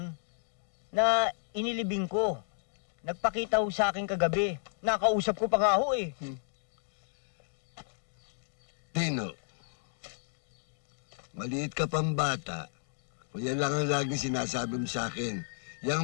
na inilibing ko. Nagpakita ho sa akin kagabi. Nakausap ko pa nga ho eh. Tino, maliit ka pang bata. O yan lang ang laging sinasabi mo sa akin. Yang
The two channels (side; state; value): right; silent; digital silence